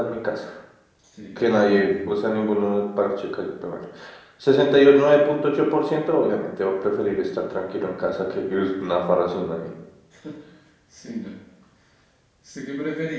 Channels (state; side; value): identical; both; correlation 1.00